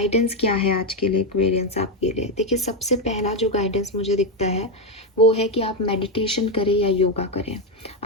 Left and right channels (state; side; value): normal; both; correlation 0.07